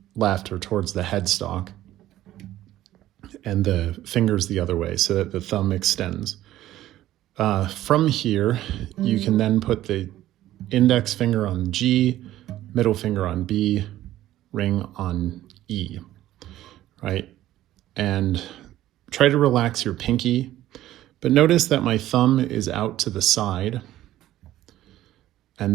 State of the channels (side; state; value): left; quieter; 14.0 dB